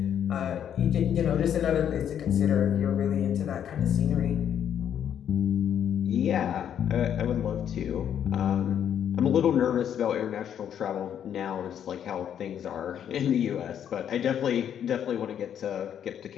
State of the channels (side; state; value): right; quieter; 9.3 dB